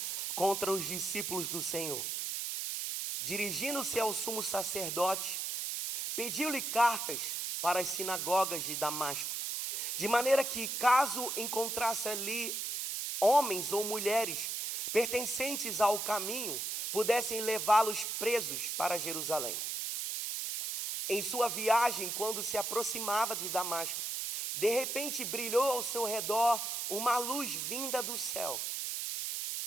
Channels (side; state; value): right; noise; hiss, 2 dB below the sound